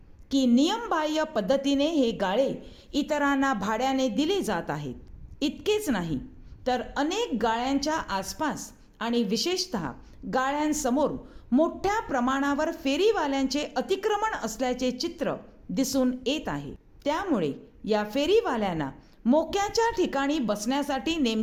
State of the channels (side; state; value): both; identical; correlation 1.00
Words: की नियमबाह्य पद्धतीने हे गाळे इतरांना भाड्याने दिले जात आहेत? इतकेच नाही तर अनेक गाळ्यांच्या आसपास आणि विशेषतः गाळ्यांसमोर मोठ्या प्रमाणावर फेरीवाल्यांचे अतिक्रमण असल्याचे चित्र दिसून येत आहे. त्यामुळे या फेरीवाल्यांना मोक्याच्या ठिकाणी बसण्यासाठी